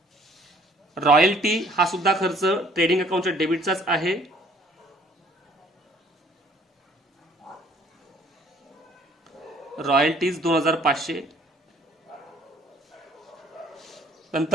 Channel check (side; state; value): both; normal; correlation 0.59